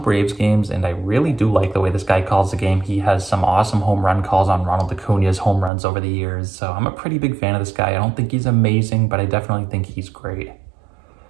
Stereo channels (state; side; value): drops out; left; at 5.7 s